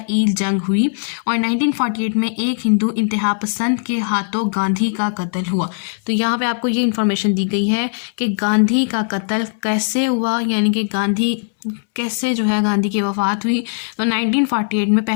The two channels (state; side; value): silent; right; 67 dB below the other